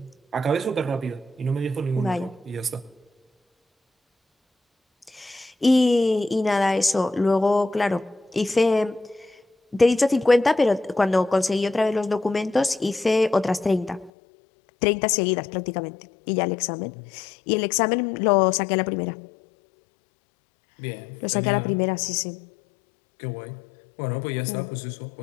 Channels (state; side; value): drops out; right; at 14.1 s